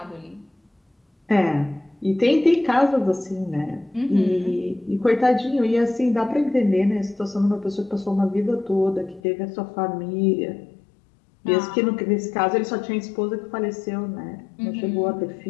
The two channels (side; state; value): right; drops out; at 9.2 s